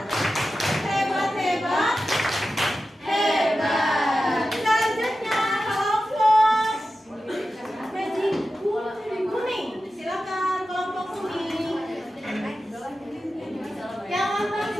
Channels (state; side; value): normal; both; correlation 0.93